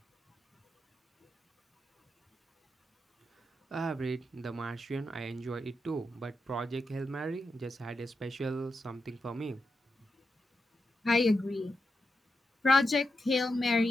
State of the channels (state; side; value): normal; both; correlation 0.87